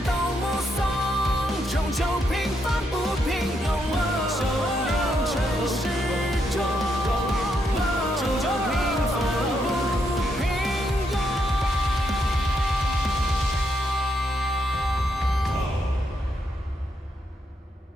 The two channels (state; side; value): normal; both; correlation 0.78